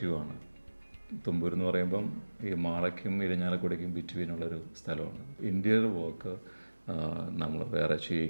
തുമ്പൂർ എന്ന് പറയുമ്പം ഈ മാളയ്ക്കും ഇരിഞ്ഞാലക്കുടയ്ക്കും ബിറ്റ്വീനുള്ളൊരു സ്ഥലമാണ്. ഇൻറ്റീരിയർ വർക്ക് നമ്മൾ വേറെ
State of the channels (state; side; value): inverted; both; correlation -1.00